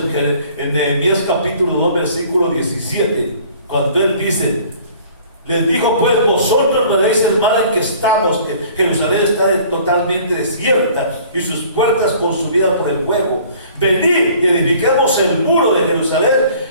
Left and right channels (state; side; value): inverted; both; correlation -0.52